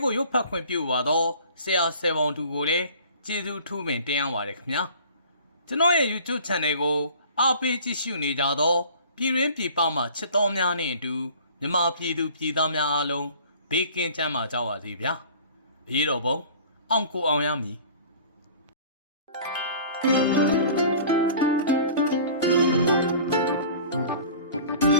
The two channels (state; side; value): inverted; both; correlation -0.46